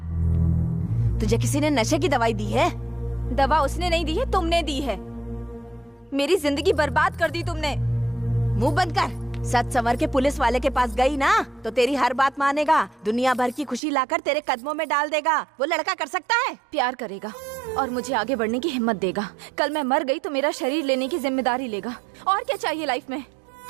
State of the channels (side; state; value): left; drops out; at 13.8 s